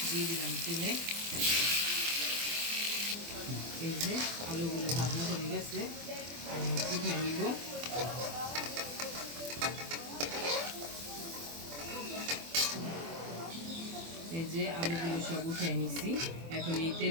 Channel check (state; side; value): late; left; 24 ms